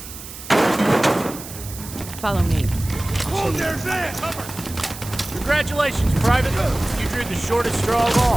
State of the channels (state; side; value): noise; right; hiss, 13 dB below the sound